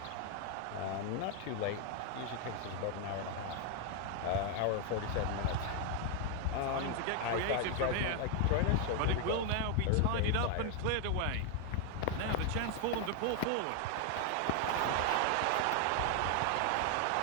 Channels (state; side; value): different; both; correlation 0.01